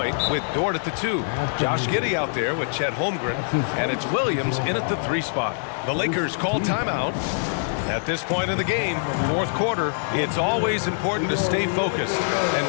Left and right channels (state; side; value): silent; right; digital silence